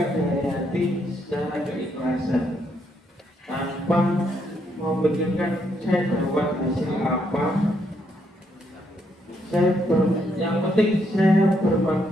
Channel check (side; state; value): both; normal; correlation 0.75